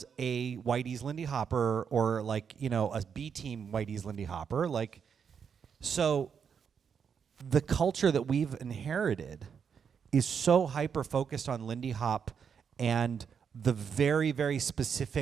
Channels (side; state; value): left; quieter; 6.9 dB